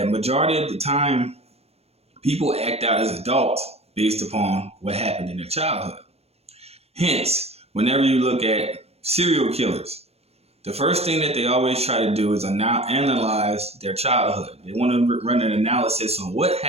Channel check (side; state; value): left; late; 0.30 ms